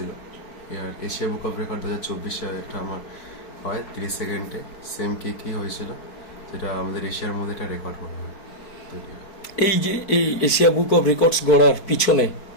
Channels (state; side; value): late; right; 4.6 ms